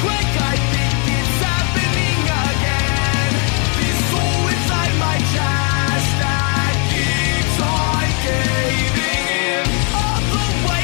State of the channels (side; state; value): right; quieter; 38.2 dB